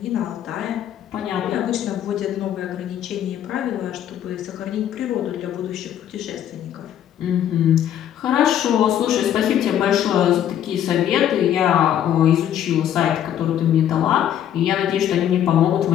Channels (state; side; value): quieter; right; 10.5 dB